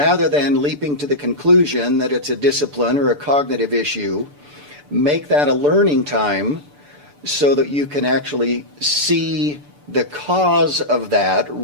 than leaping to the conclusion that it's a discipline or a cognitive issue, make that a learning time so that you can actually see the cause of that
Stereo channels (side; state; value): left; late; 6.8 ms